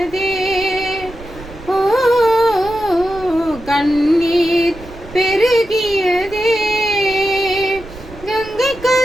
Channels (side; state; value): right; noise; rumble, 17 dB below the sound